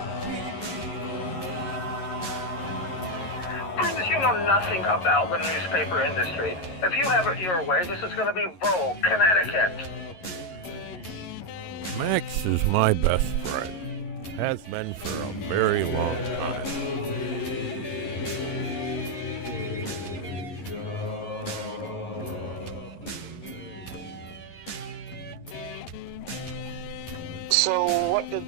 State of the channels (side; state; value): right; late; 11 ms